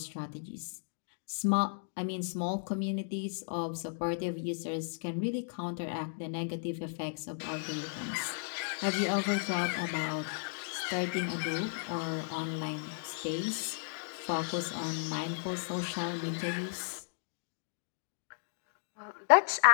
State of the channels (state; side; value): silent; right; digital silence